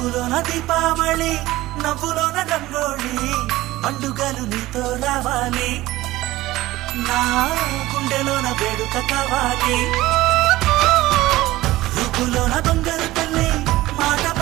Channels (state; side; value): quieter; left; 17.4 dB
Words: ముక్కులోన దీపావళి నవ్వులోన రంగోళి పండుగలు నీతో రావాలి నా గుండెలోన వేడుక కావాలి రుపులోన దొంగలు తల్లి మాట